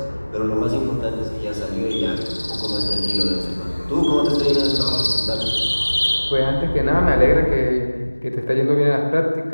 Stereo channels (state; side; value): inverted; both; correlation -1.00